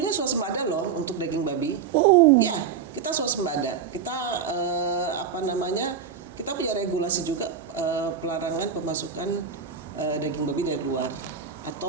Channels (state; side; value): quieter; left; 6.9 dB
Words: swasembada loh untuk daging babi. Ya, kita swasembada. Kita kita punya regulasi juga pelarangan pemasukan daging babi dari luar